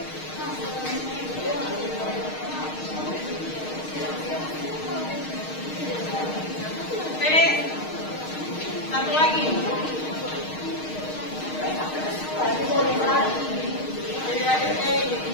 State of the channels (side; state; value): right; late; 6.5 ms